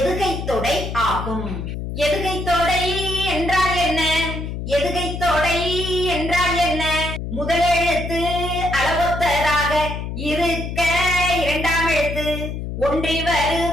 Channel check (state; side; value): noise; left; hum, 6 dB below the sound